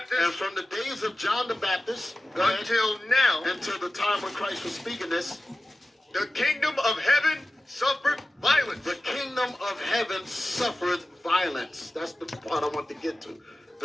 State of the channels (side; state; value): both; normal; correlation 0.95